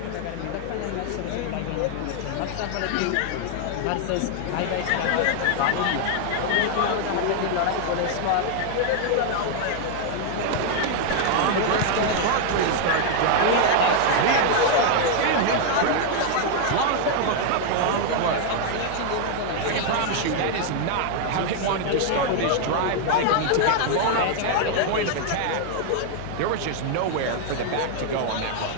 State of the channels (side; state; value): both; different; correlation 0.00